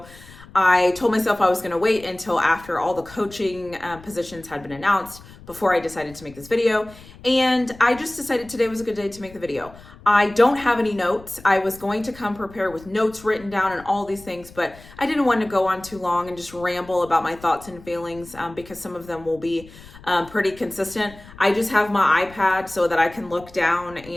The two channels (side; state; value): left; noise; rumble, 20 dB below the sound